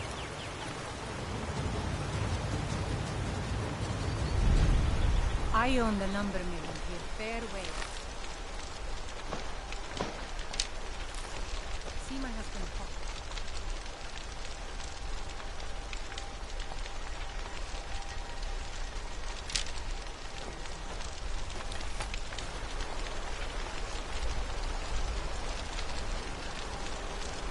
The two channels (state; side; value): identical; both; correlation 1.00